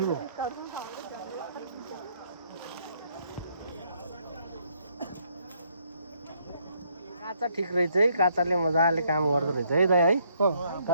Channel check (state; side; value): inverted; both; correlation -0.70